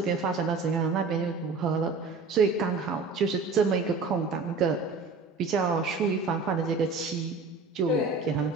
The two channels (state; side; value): quieter; left; 4.1 dB